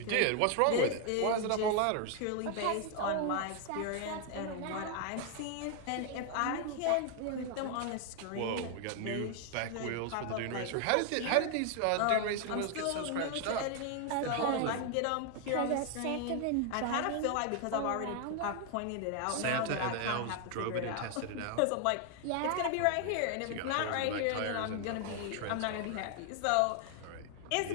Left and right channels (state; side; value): different; both; correlation 0.00